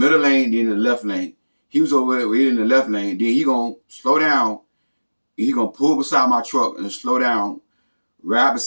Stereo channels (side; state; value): both; inverted; correlation -1.00